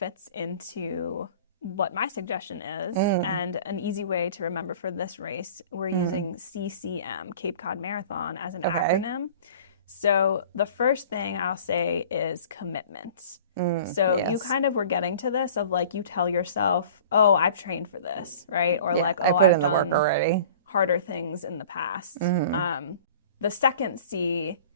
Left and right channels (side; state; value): both; inverted; correlation -0.44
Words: into what my suggestion is. And an easy way to remember for this race, we're using CCM, Cape Cod Marathon, as an acronym. So the first thing I'll say is commitment. So you kind of were getting to this of like, you tell yourself, oh, I've trained for this, right? Or like, oh, I've done already harder things in the past. The second C